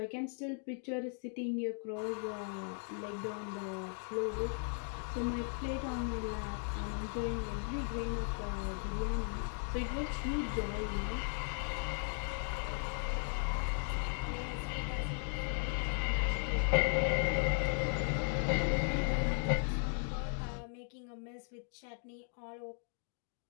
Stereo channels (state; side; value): silent; right; 53 dB below the other